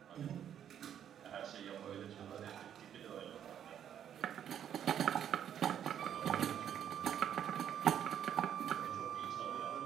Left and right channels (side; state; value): left; quieter; 9.5 dB